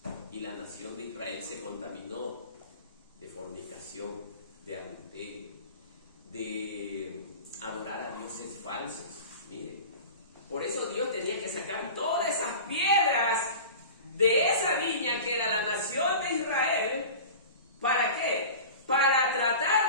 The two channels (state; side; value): inverted; both; correlation -0.36